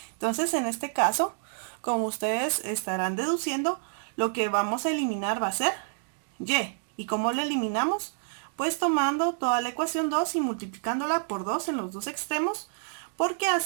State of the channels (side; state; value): left; silent; digital silence